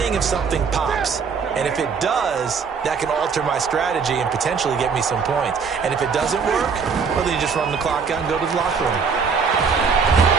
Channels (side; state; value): left; quieter; 5.8 dB